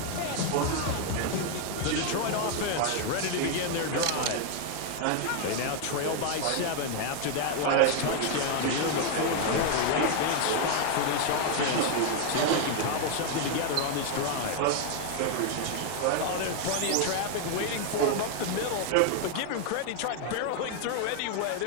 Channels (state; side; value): different; both; correlation 0.00